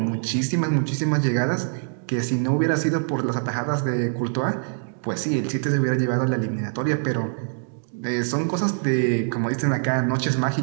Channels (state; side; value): silent; left; digital silence